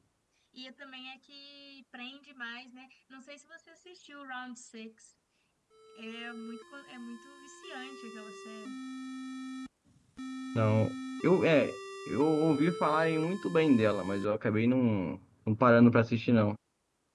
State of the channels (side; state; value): both; identical; correlation 1.00